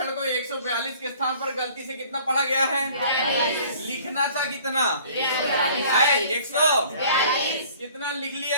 को 142 के स्थान पर गलती से कितना पढ़ा गया है? लिखना था कितना है? 142 कितना लिख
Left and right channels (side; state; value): both; inverted; correlation -0.52